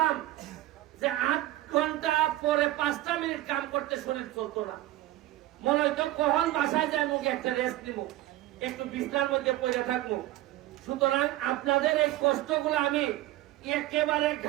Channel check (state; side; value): quieter; left; 15.8 dB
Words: যে 8 ঘন্টা পরে 5টা মিনিট কাম করতে শরীর চলতো না। মনে হইতো কখন বাসায় যায় মুখে একটা রেস্ট নিব, একটু বিছনার মধ্যে পড়ে থাকবো। সুতরাং আপনাদের এই কষ্টগুলো আমি একেবারে